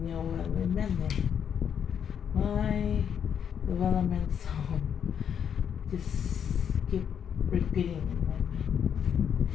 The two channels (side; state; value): right; quieter; 8.1 dB